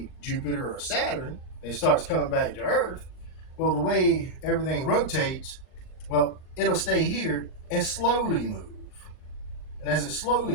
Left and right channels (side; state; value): right; late; 38 ms